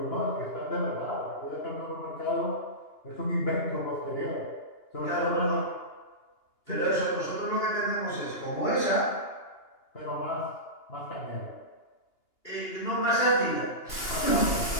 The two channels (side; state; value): right; late; 2.8 ms